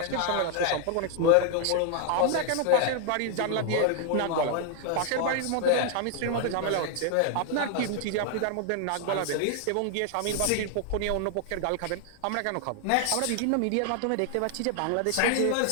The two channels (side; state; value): both; different; correlation 0.00